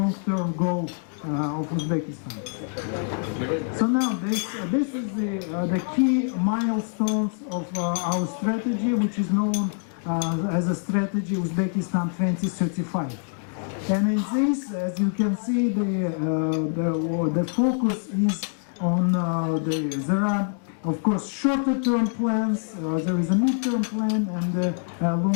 goal of Uzbekistan. So now this is the key milestones of our strategy, which is known as a strategy Uzbekistan 2035. And in this, as you can see, the focus is on there are of course, shorter-term plans, there is a mid-term plan and a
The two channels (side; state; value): right; silent; 58 dB below the other